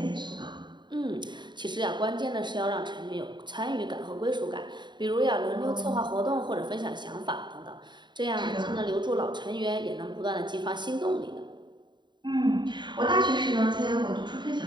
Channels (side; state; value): left; late; 0.22 ms